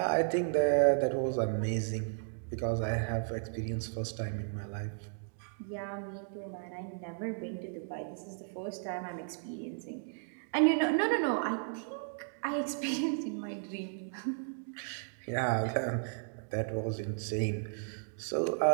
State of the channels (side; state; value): left; silent; digital silence